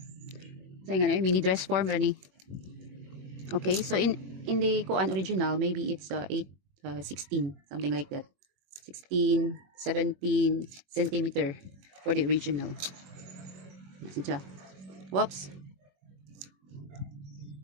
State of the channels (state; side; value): late; left; 21 ms